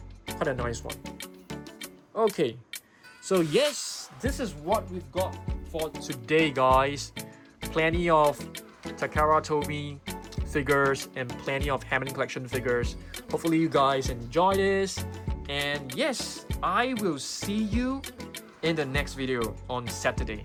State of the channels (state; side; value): identical; both; correlation 1.00